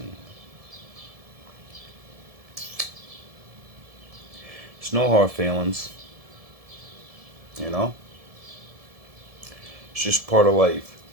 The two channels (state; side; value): late; left; 1.7 ms